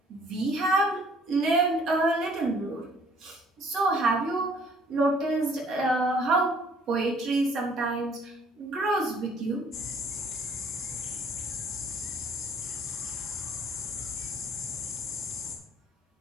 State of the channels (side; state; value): both; normal; correlation 0.59